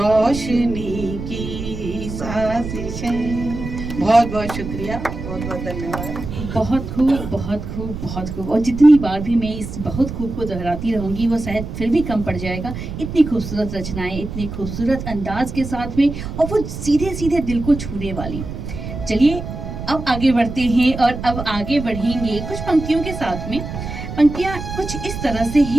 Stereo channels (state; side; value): noise; right; rumble, 8 dB below the sound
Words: की साजिशें। बहुत बहुत शुक्रिया, बहुत बहुत धन्यवाद। बहुत खूब, बहुत खूब, बहुत खूब। और जितनी बार भी मैं इस बहुत खूब को दोहराती रहूंगी वो शायद फिर भी कम पड़ जाएगा। इतनी खूबसूरत रचनाएं, इतनी खूबसूरत अंदाज के साथ में, और वो सीधे सीधे दिल को छूने वाली। चलिए अब आगे बढ़ते हैं और अब आगे बढ़ेंगे कुछ पंक्तियों के साथ में। पंक्तियाँ कुछ इस तरह से